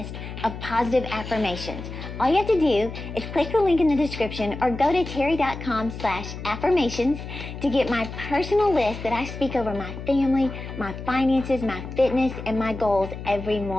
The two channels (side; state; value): left; noise; hum, 10 dB below the sound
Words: of positive affirmations. All you have to do is click the link in the description or go to terry.com/affirmations to get my personal list that I speak over my family, my finances, my fitness, and my goals every